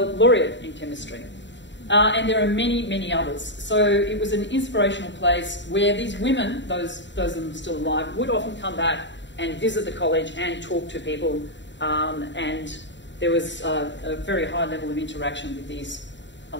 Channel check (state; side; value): late; right; 0.53 ms